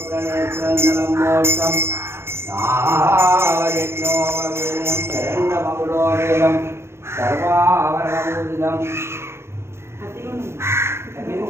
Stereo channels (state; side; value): late; left; 0.12 ms